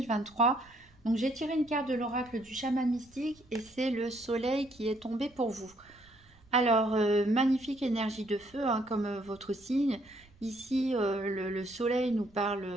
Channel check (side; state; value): right; noise; rumble, 28 dB below the sound